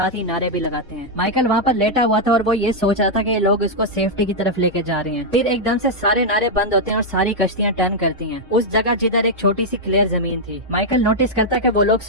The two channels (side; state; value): both; normal; correlation -0.03